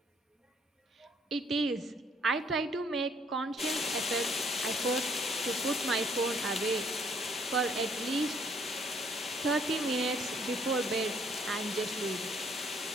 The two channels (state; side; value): normal; both; correlation 0.65